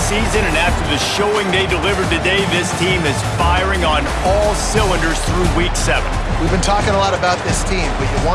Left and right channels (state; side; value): identical; both; correlation 1.00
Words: and after the showing they delivered today, this team is firing on all cylinders through Week 7. We've been talking a lot about this team, but you